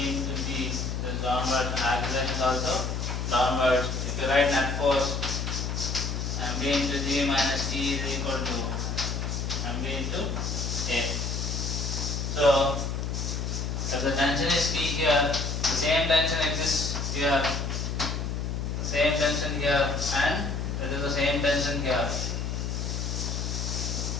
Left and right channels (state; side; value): noise; left; hum, 2 dB below the sound